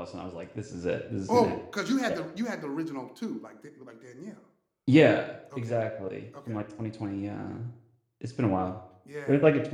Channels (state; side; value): identical; both; correlation 1.00